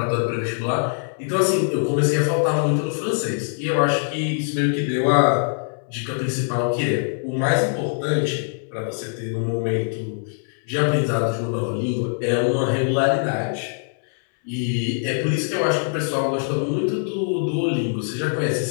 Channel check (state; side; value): silent; right; 64 dB below the other